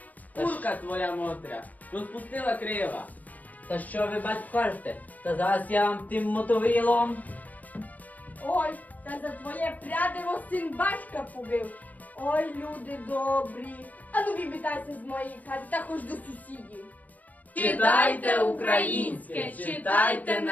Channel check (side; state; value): right; late; 0.077 ms